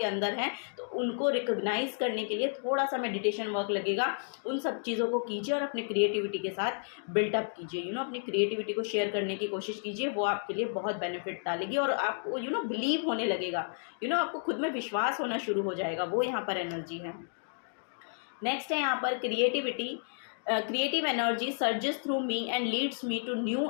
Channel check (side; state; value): right; silent; digital silence